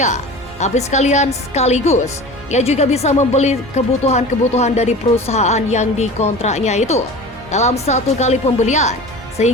tapi sekaligus ia juga bisa membeli kebutuhan-kebutuhan dari perusahaan yang dikontraknya itu dalam satu kali pembelian,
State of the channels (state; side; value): normal; both; correlation 0.36